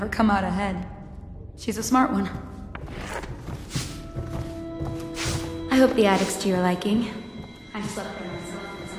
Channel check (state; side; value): identical; both; correlation 1.00